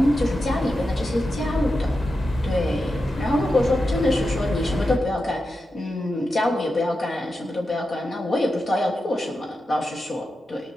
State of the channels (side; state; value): both; normal; correlation 0.90